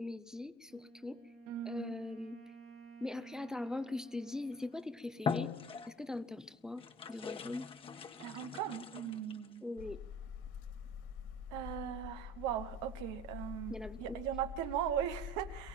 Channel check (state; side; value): normal; both; correlation 0.45